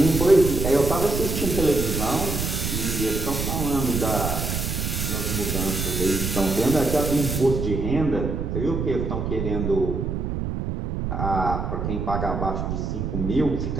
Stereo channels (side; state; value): right; noise; rumble, 2 dB below the sound